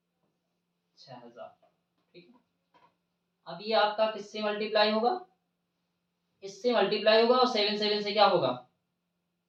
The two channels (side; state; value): both; identical; correlation 1.00